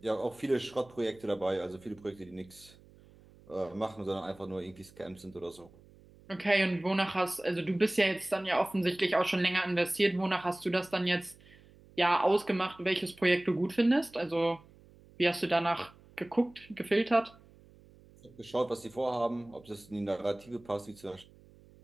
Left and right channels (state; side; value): noise; right; hum, 25 dB below the sound